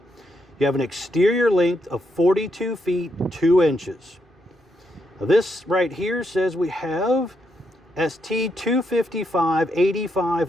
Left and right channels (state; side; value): normal; both; correlation 0.79